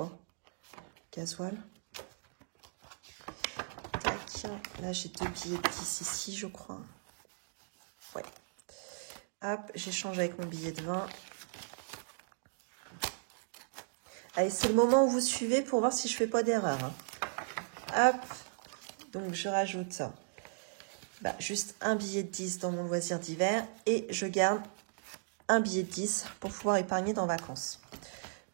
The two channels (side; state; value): left; silent; digital silence